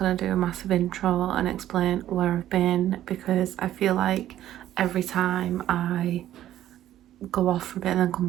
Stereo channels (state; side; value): quieter; left; 12.6 dB